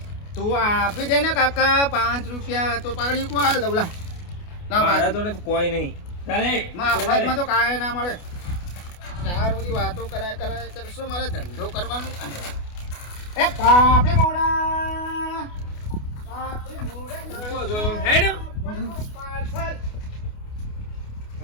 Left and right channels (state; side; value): late; right; 28 ms